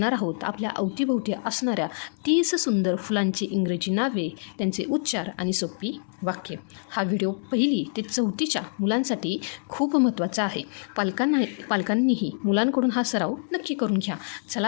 आहोत आपल्या अवतीभोवती असणाऱ्या 30 सुंदर फुलांची इंग्रजी नावे, त्यांचे उच्चार आणि सोपी वाक्य. हा व्हिडिओ 1ली ते 4थीच्या मुलांसाठी खूप महत्त्वाचा आहे. पालकांनीही मुलांकडून हा सराव नक्की करून घ्या.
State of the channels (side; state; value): right; silent; digital silence